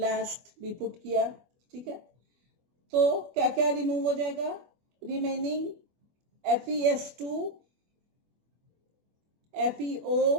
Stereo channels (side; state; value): left; late; 24 ms